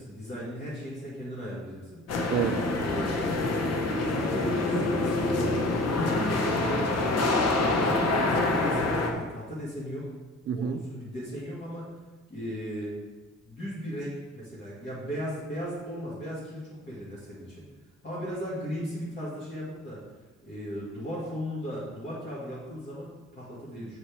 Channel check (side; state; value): both; normal; correlation 0.43